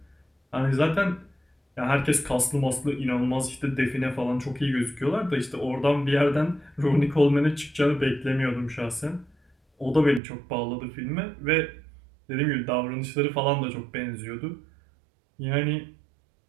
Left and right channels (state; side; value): drops out; left; at 10.2 s